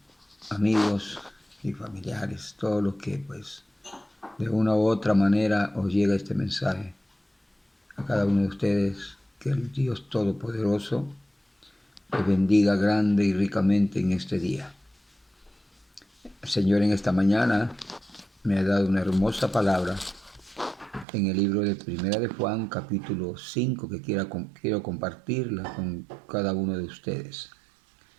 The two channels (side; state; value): left; drops out; at 21.1 s